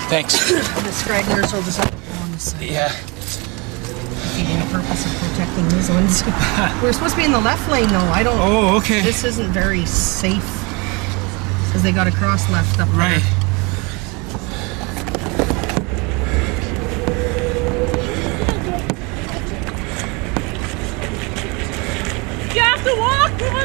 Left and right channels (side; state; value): left; quieter; 28.5 dB